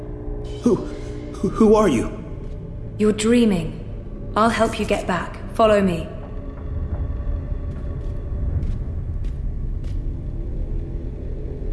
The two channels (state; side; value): identical; both; correlation 1.00